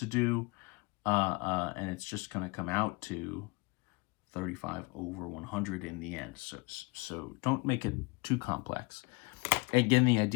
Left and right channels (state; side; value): quieter; right; 27.2 dB